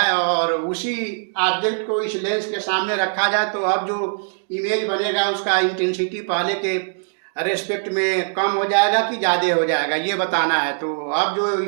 और उसी ऑब्जेक्ट को इस लेंस के सामने रखा जाए तो अब जो इमेज बनेगा उसका इंटेंसिटी पहले के रेस्पेक्ट में कम हो जाएगा कि ज़्यादा हो जाएगा, ये बताना है। तो अब जो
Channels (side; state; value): left; silent; digital silence